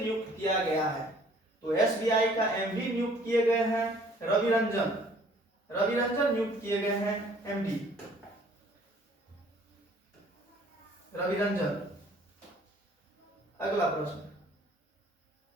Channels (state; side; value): normal; both; correlation 0.56